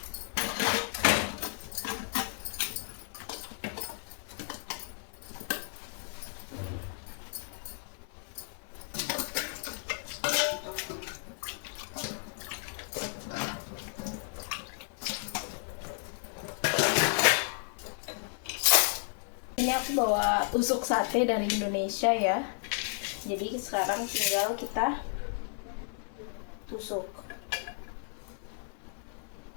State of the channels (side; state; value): right; silent; 56 dB below the other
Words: Ini aku bawa tusuk sate dari Indonesia ya. Jadi sekarang tinggal kita tusuk.